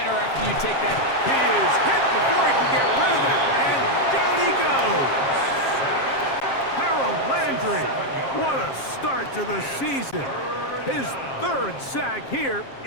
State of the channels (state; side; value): late; right; 7.5 ms